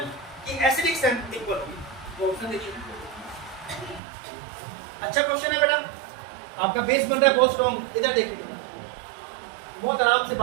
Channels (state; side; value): drops out; left; at 4.0 s